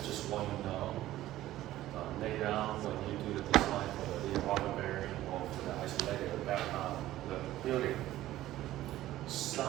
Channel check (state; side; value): quieter; left; 14.8 dB